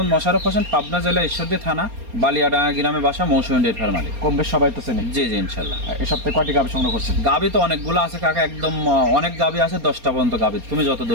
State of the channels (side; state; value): left; late; 4.3 ms